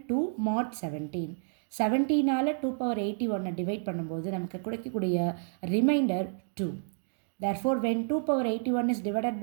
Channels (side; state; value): left; silent; digital silence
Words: to mod 17. 17ஆல் 2 power 81 divide பண்ணும்போது நமக்கு கிடைக்கக்கூடிய reminder 2. Therefore, when 2 power 81 is divided